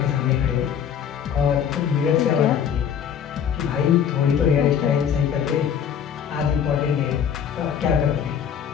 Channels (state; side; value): quieter; right; 8.3 dB